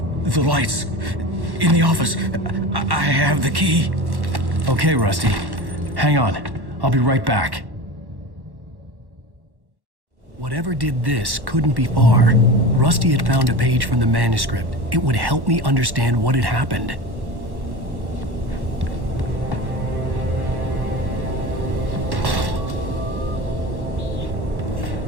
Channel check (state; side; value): late; left; 1.1 ms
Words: The lights. In the office. I have the key. Okay, Rusty. Hang on. I'll be right back. Whatever did this couldn't be far. Rusty had found a page from the manuscript. It would help me understand what had happened.